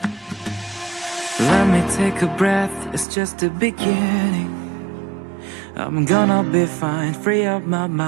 Let me take a breath, it's just the beginning. I'm gonna be fine, free up my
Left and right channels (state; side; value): drops out; left; at 3.1 s